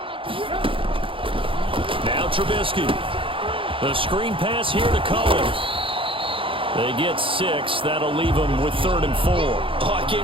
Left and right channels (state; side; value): late; left; 0.25 ms